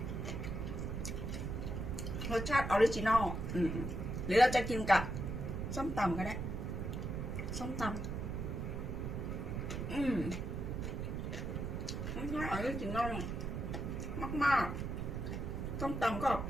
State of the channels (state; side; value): noise; right; rumble, 3 dB below the sound